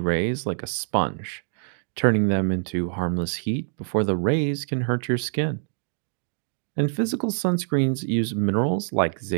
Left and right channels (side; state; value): left; silent; digital silence